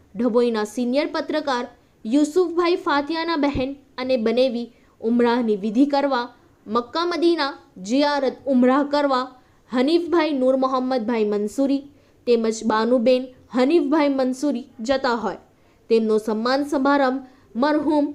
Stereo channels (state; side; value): identical; both; correlation 1.00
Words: ઢબોઈના સિનિયર પત્રકાર યુસુફભાઈ ફાતિયાના બહેન અને બનેવી ઉમરાહની વિધિ કરવા મક્કા મદીના જિયારત ઉમરાહ કરવા હનીફભાઈ નૂર મોહમ્મદભાઈ મંસૂરી તેમજ બાનુબેન હનીફભાઈ મંસૂરી જતા હોય તેમનો સન્માન સમારંભ મરહૂમ